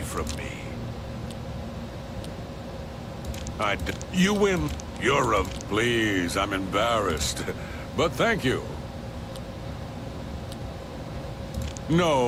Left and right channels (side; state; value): both; identical; correlation 1.00